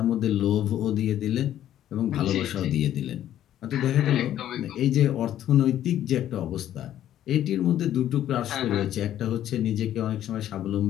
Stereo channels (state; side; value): quieter; right; 11.7 dB